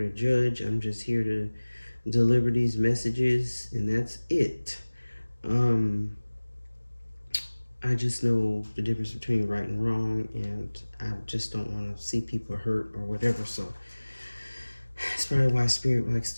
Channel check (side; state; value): both; inverted; correlation -1.00